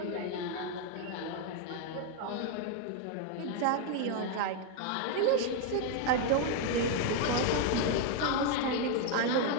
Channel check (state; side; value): different; both; correlation 0.01